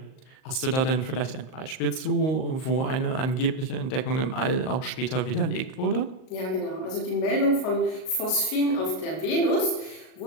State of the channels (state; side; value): late; right; 38 ms